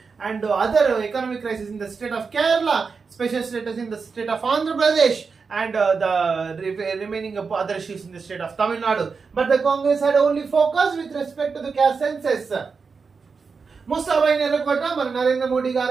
and other economic crisis in the state of Kerala, special status in the state of Andhra Pradesh, and the remaining other issues in the state of Tamil Nadu. But the Congress had only focused with respect to the caste census. Mustafa Nerokota, Narendra Modi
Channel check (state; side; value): quieter; left; 5.1 dB